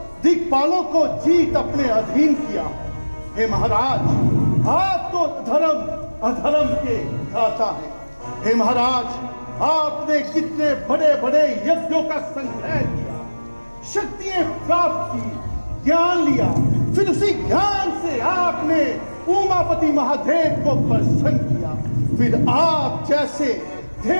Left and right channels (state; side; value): inverted; both; correlation -1.00